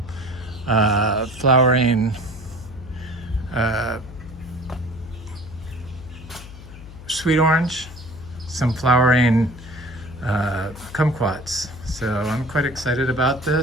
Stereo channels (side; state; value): left; noise; hum, 15 dB below the sound